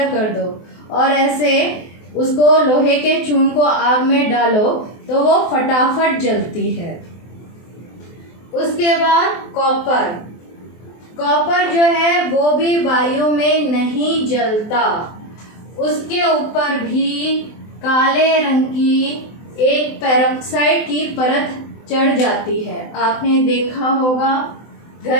कर दो और ऐसे उसको लोहे के चून को आग में डालो तो वो फटाफट जलती है। उसके बाद कॉपर जो है वो भी वायु में नहीं जलता। उसके ऊपर भी काले रंग की एक पेरोक्साइड की परत चढ़ जाती है। आपने देखा होगा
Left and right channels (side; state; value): right; late; 23 ms